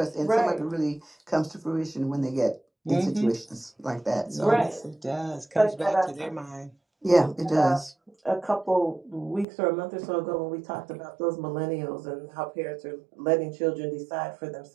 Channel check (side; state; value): left; drops out; at 9.5 s